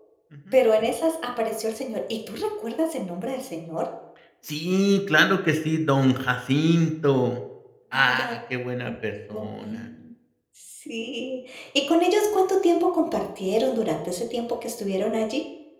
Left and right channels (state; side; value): identical; both; correlation 1.00